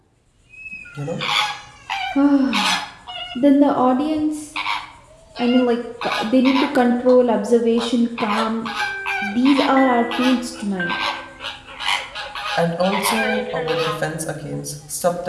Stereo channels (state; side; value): identical; both; correlation 1.00